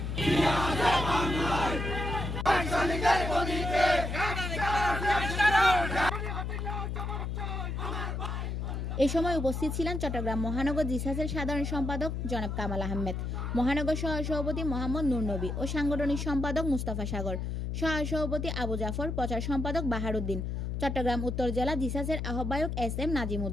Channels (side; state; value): left; noise; hum, 3 dB below the sound